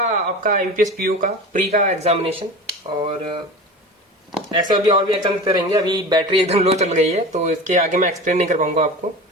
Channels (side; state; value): both; normal; correlation 0.32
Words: आईपीएस पीओ का प्री का एग्जामिनेशन। और ऐसे अभी और भी एग्जाम देते रहेंगे। अभी बैटरी एकदम लो चल गई है, तो इसके आगे मैं एक्सप्लेन नहीं कर पाऊंगा आपको,